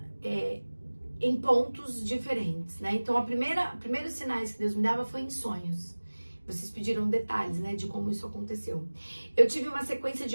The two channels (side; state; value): both; inverted; correlation -1.00